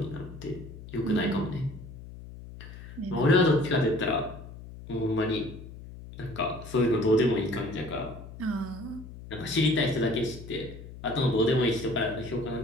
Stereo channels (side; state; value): left; noise; hum, 14 dB below the sound